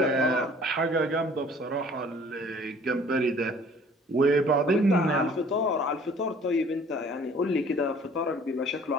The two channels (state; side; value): normal; both; correlation 0.53